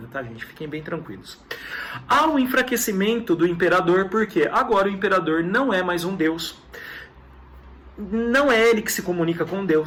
tá, gente? Fiquem bem tranquilos. Há um enfraquecimento do imperador, porque agora o imperador não é mais um deus. Não é ele que se comunica com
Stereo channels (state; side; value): identical; both; correlation 1.00